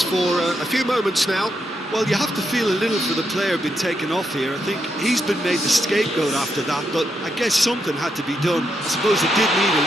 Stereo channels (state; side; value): normal; both; correlation 0.81